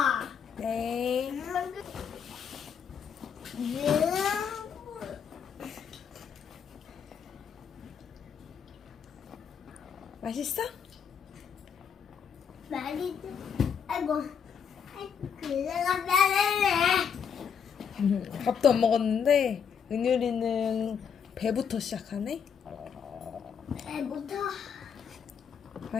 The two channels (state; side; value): quieter; right; 7.2 dB